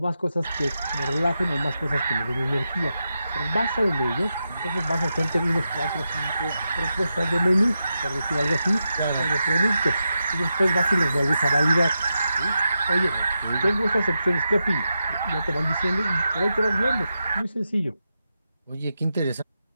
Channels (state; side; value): inverted; both; correlation -0.88